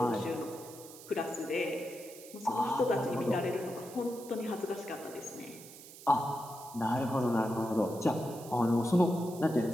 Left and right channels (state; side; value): noise; right; hiss, 17 dB below the sound